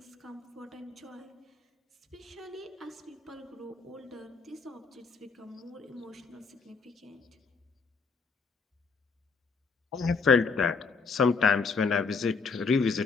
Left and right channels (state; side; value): quieter; right; 4.8 dB